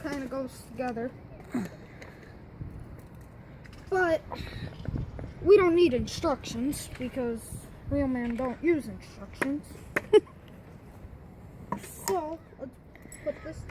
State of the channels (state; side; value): identical; both; correlation 1.00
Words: of goes together. But we don't need instructions because real men don't use instructions. So let's put this